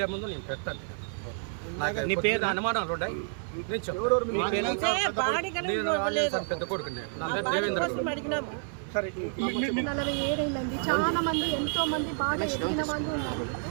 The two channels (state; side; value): silent; left; 58 dB below the other